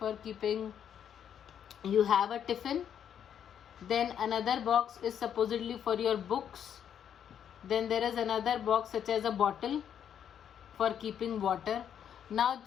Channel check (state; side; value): quieter; right; 8.9 dB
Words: keeping, you have a tiffin. Then another box is supposedly for your books. Then there is another box such as a bottle for keeping water. Now